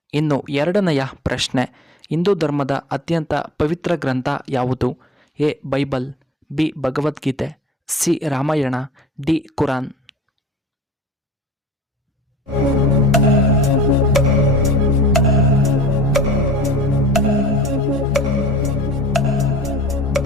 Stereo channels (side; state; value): both; normal; correlation 0.43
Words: ಇನ್ನು ಎರಡನೆಯ ಪ್ರಶ್ನೆ, ಹಿಂದೂ ಧರ್ಮದ ಅತ್ಯಂತ ಪವಿತ್ರ ಗ್ರಂಥ ಯಾವುದು? A Bible, B Bhagavad Gita, C Ramayana, D Quran.